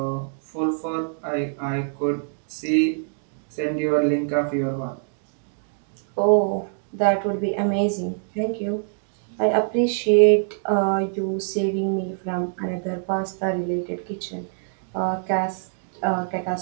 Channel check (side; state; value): left; silent; digital silence